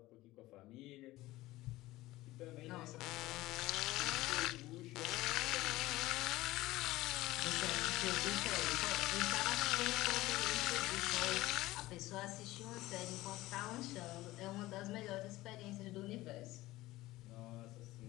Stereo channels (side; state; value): right; quieter; 17.9 dB